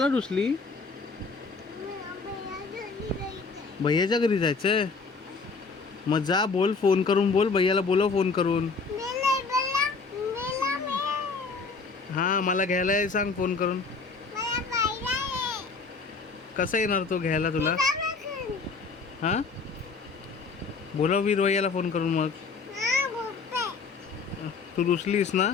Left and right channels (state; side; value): quieter; right; 4.5 dB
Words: रुसली? भैयाच्या घरी जायचंय? मग जा, बोल, फोन करून बोल, भैयाला बोलव फोन करून. हा मला घ्यायला ये सांग फोन करून. कसं येणार तो घ्यायला तुला? हा बोलव वीर भैयाला फोन करून. मग तू रुसलीस ना?